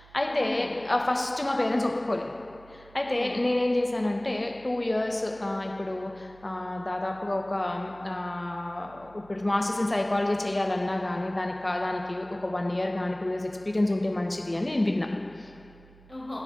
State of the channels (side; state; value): right; noise; hum, 24 dB below the sound